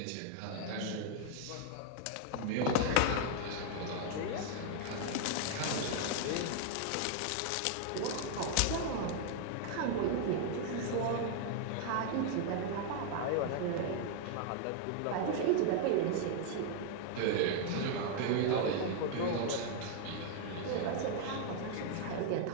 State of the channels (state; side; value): different; both; correlation 0.00